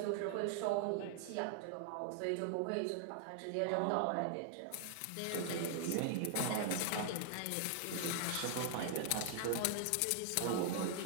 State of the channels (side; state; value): both; different; correlation 0.00